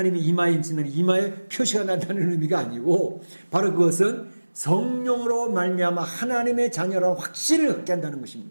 이마에 인 치는 이마에 표시가 난다는 의미가 아니고, 바로 그것은 성령으로 말미암아 하나님의 자녀라는 확신을 갖게 한다는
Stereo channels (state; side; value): inverted; both; correlation -1.00